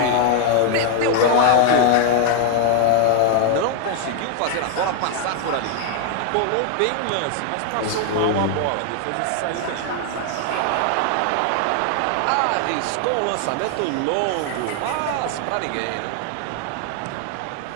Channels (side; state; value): both; different; correlation 0.00